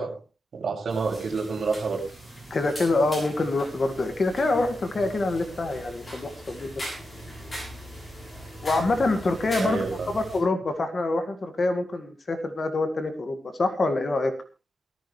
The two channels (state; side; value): normal; both; correlation 0.88